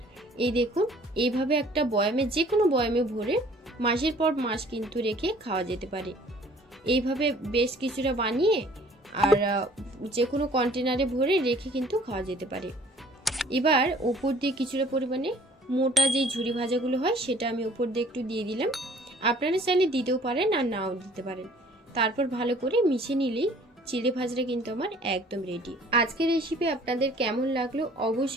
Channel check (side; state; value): both; normal; correlation 0.55